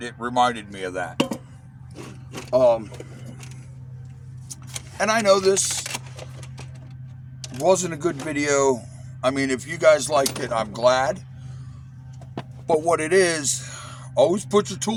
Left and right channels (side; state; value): both; identical; correlation 1.00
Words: reminded me of that. And I know this wasn't a good video. I mean, if you guys liked it, I'm glad. But what it is, always put your